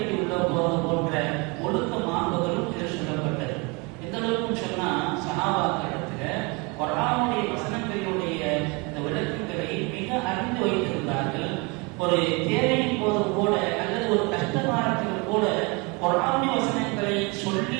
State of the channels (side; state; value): left; quieter; 29.0 dB